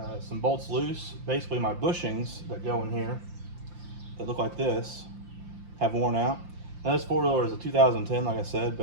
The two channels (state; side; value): late; left; 5.7 ms